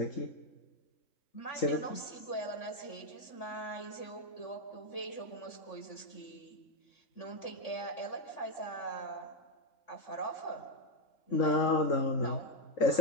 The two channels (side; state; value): right; late; 3.5 ms